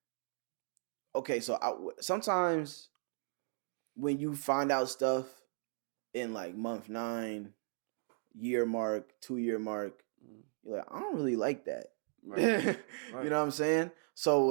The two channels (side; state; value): left; silent; 53 dB below the other